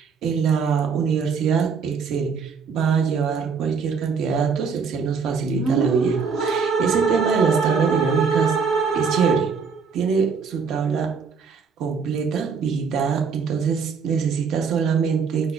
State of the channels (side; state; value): left; quieter; 5.7 dB